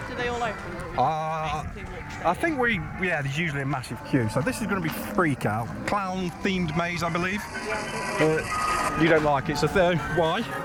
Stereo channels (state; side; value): identical; both; correlation 1.00